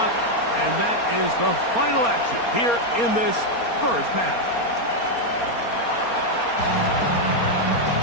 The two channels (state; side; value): late; right; 4.3 ms